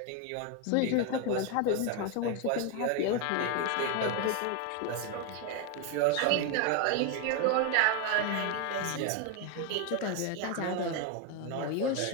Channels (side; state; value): both; different; correlation 0.01